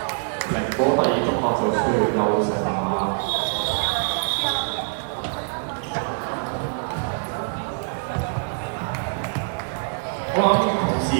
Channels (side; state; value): left; silent; digital silence